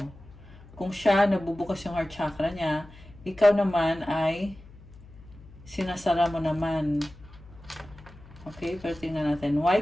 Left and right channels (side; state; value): left; noise; hum, 21 dB below the sound